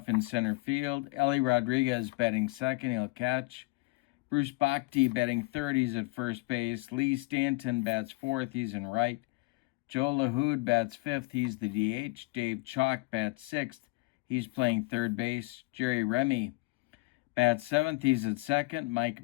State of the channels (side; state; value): right; quieter; 24.3 dB